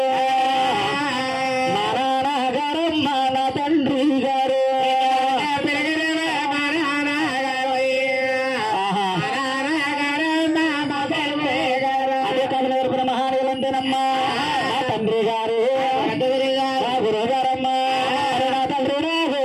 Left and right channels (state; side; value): identical; both; correlation 1.00